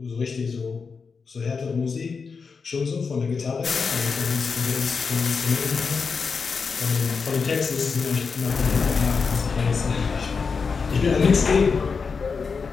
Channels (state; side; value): quieter; right; 5.2 dB